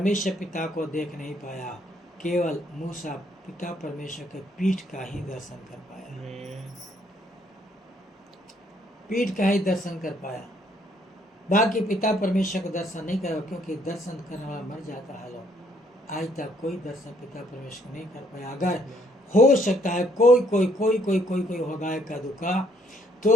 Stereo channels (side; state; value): both; normal; correlation 0.68